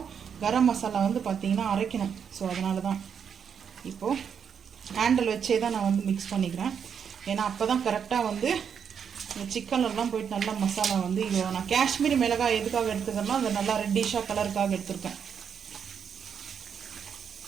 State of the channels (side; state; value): left; quieter; 7.4 dB